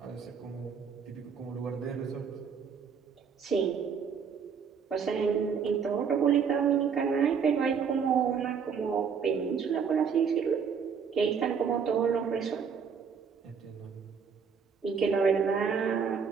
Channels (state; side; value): quieter; left; 6.5 dB